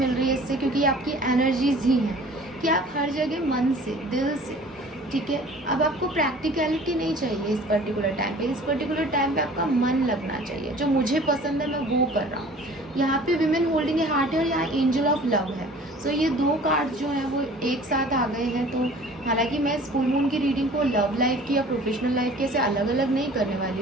रही है इससे, क्योंकि आपकी एनर्जीज ही हैं कि आप हर जगह मन से, दिल से, ठीक है। अब आपको प्रैक्टिकलिटी नहीं चाहिए इस पर्टिकुलर टाइम पे। इस पर्टिकुलर टाइम पे आपका मन लगना चाहिए। जो मुझे पसंद है मैं वो कर रहा हूँ। यहाँ पे विमेन होल्डिंग ए हार्ट है और यहाँ एंजल ऑफ लव है। सो ये दो कार्ड जो हैं वो एक साथ आ गए हैं। तो हालांकि मैं इस फुल मून की रीडिंग को लव लाइफ की या प्रोफेशनल लाइफ के से अलग अलग नहीं करने वाली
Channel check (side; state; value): both; normal; correlation 0.47